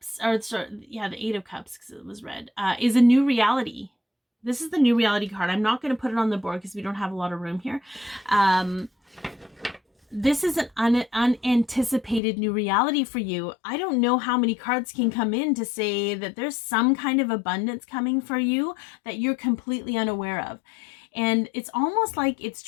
or sorry, yeah, the Eight of Cups, because it was red, is a new reality. This is the new reality card. I'm not going to put it on the board because we don't have a lot of room here. This is an unanticipated new reality for you. I don't know how many cards can come in to say that there's some kind of abundance coming for you that you're completely unaware of. And it's almost like it's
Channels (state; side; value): drops out; right; at 12.2 s